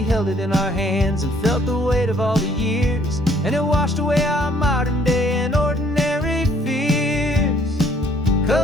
held it in our hands and felt the weight of all the years, and it washed away our modern day and ordinary fears.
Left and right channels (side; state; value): both; normal; correlation 0.62